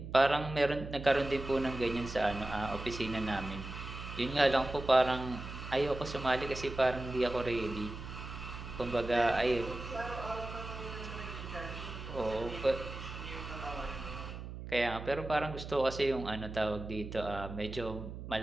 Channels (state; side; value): noise; right; hum, 9 dB below the sound